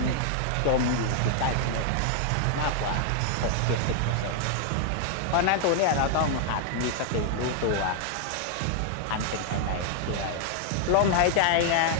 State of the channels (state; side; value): different; both; correlation 0.00